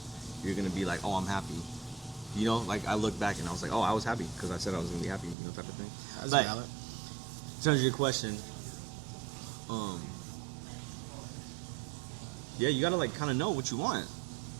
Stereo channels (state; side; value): drops out; left; at 5.4 s